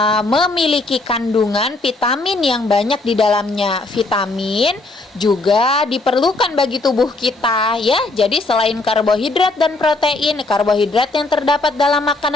memiliki kandungan vitamin yang banyak di dalamnya. Vitamin juga diperlukan bagi tubuh kita ya. Jadi selain karbohidrat dan protein, karbohidrat yang terdapat dalam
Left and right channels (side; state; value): right; quieter; 3.1 dB